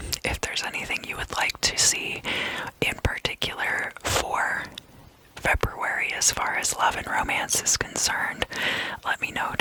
If there's anything you would like to see in particular for February as far as love and romance is concerned, let me know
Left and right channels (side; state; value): both; identical; correlation 1.00